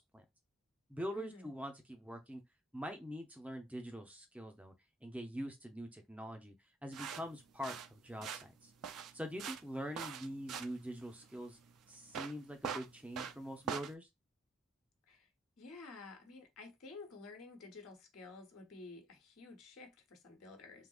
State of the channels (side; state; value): both; normal; correlation 0.70